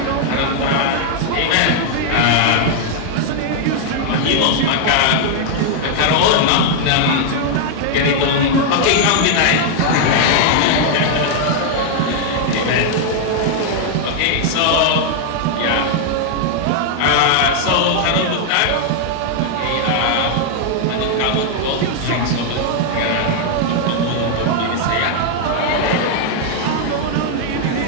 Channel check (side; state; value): both; different; correlation 0.00